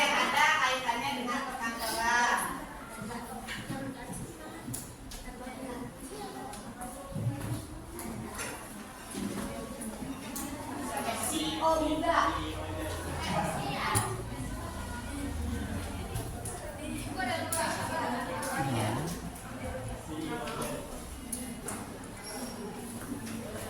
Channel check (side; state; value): both; identical; correlation 1.00